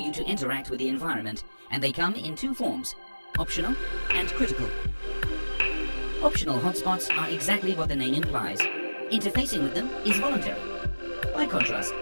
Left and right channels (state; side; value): inverted; both; correlation -1.00